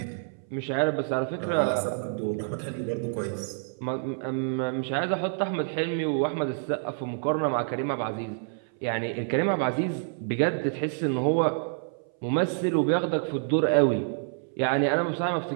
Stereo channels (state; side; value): silent; left; 60 dB below the other